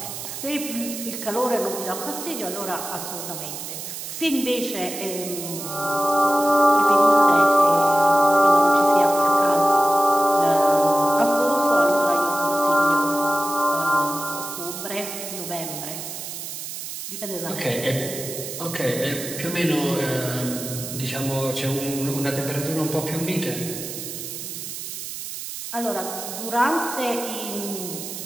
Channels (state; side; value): noise; right; hiss, 8 dB below the sound